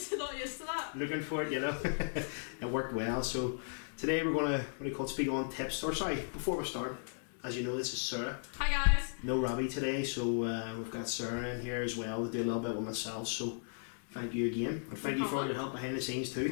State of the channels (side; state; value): right; silent; digital silence